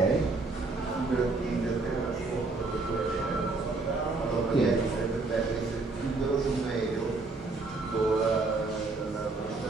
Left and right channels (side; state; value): left; quieter; 3.6 dB